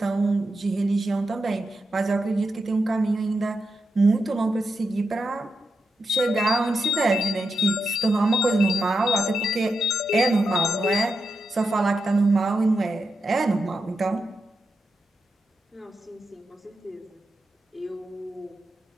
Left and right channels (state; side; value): normal; both; correlation 0.86